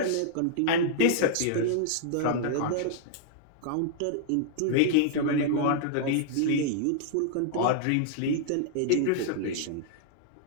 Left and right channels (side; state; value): both; different; correlation -0.01